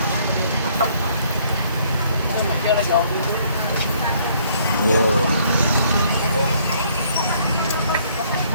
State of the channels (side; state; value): both; inverted; correlation -0.64